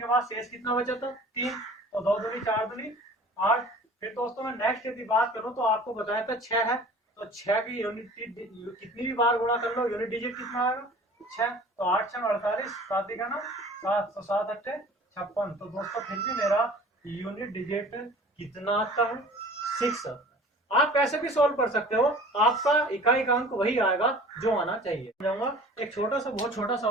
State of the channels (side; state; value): both; normal; correlation 0.45